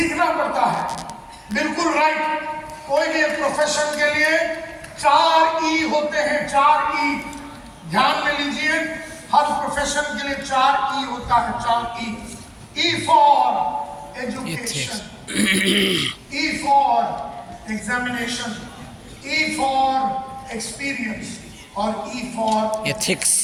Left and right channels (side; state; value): both; identical; correlation 1.00